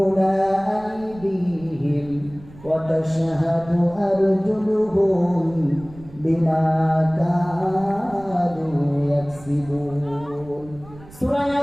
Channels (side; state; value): right; noise; rumble, 20 dB below the sound